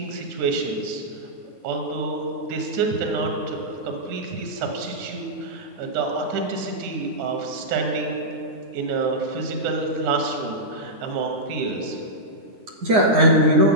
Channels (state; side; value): late; left; 9.6 ms